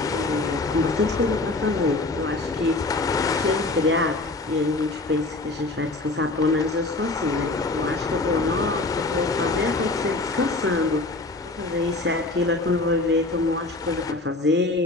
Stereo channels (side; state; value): right; quieter; 3.1 dB